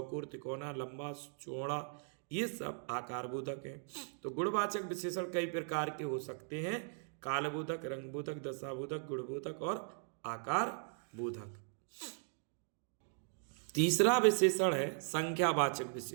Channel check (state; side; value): silent; left; 52 dB below the other